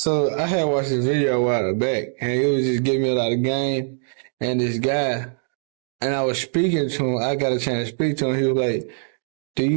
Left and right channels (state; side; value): silent; left; 64 dB below the other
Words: watched this video a while back, and it was just giving me a lot of game. And this guy, and I was speaking to him. I got a chance to speak to him. He was like,